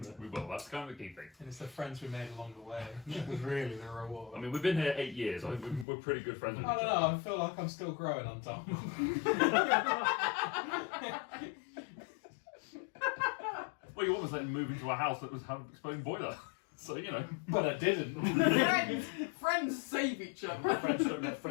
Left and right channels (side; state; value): right; drops out; at 5.9 s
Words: We will, that's kind of the key thing. And it's the friends we made along the way. That was really the reward. I mean, we've been here 8 years. I think we're pretty good friends with I each don't other. know, I feel like I'm still growing on Tom. Well, you almost let him move into a house that was having an exploding boiler. So, you know. But I didn't. Friends save each other. Friends don't let